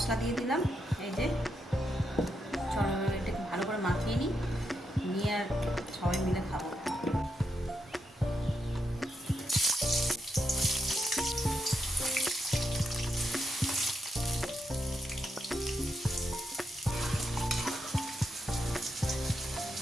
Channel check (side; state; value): both; normal; correlation 0.83